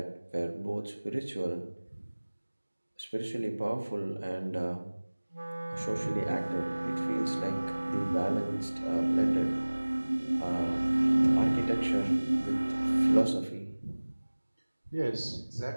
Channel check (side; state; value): both; inverted; correlation -1.00